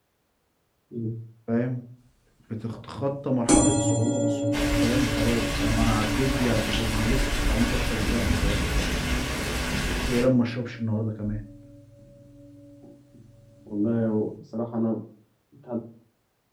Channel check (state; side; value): identical; both; correlation 1.00